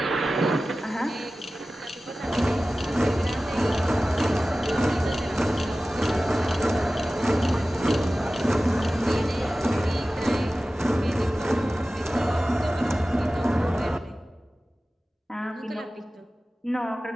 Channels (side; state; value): both; normal; correlation 0.96